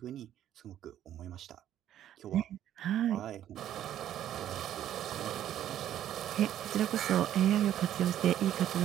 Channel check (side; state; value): left; quieter; 11.3 dB